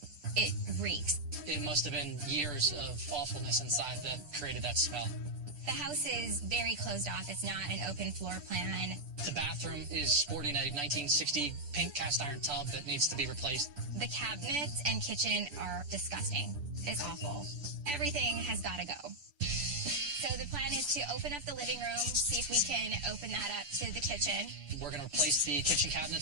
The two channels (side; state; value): left; late; 6.8 ms